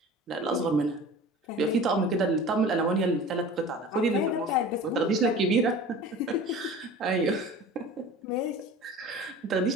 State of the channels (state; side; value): normal; both; correlation 0.39